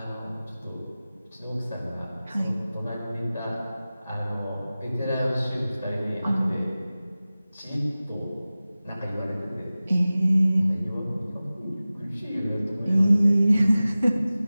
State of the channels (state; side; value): inverted; both; correlation -0.97